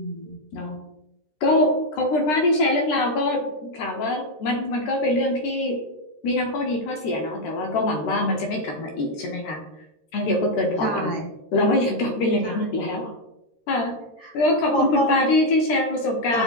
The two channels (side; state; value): right; late; 13 ms